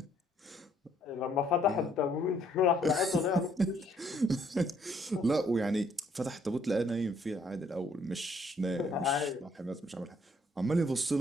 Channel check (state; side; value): normal; both; correlation 0.66